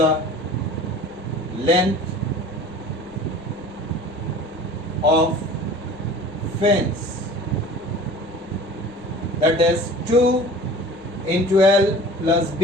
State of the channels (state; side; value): noise; left; rumble, 28 dB below the sound